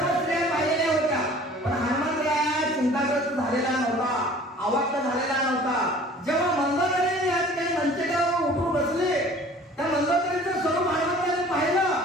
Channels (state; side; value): normal; both; correlation 0.48